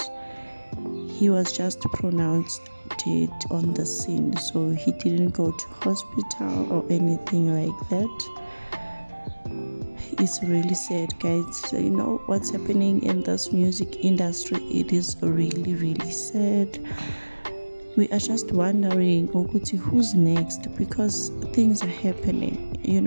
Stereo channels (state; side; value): inverted; both; correlation -1.00